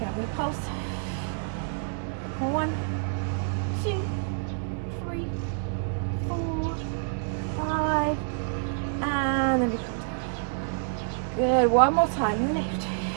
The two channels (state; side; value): silent; left; 59 dB below the other